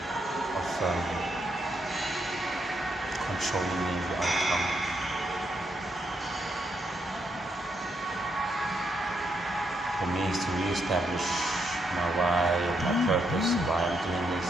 of controlling the outcome. For me, it's to re-establish my why and my purpose, why I'm doing this.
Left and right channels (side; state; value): both; normal; correlation 0.79